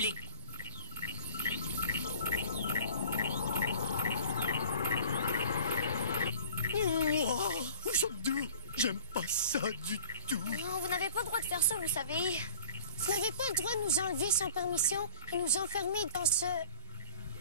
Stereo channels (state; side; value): inverted; both; correlation -0.46